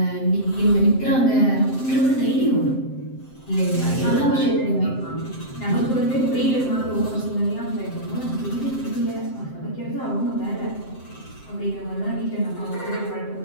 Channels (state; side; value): late; right; 7.7 ms